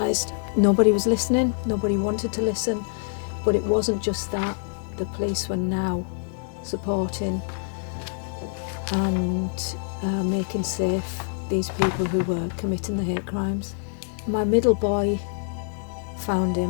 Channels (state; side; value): silent; right; 60 dB below the other